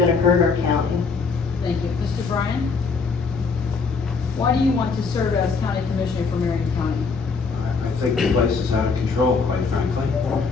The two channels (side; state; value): right; quieter; 4.8 dB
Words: hurt our county. Thank you. Mr. Bryan? Why do you want to serve as county commissioner for Marion County? I think the place is out of control, quite frankly.